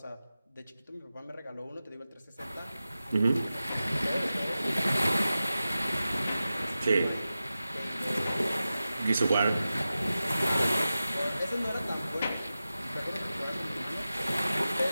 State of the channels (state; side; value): inverted; both; correlation -0.94